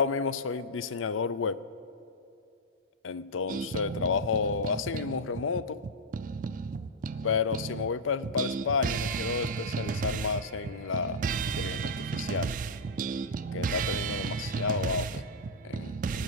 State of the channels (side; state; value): both; normal; correlation -0.06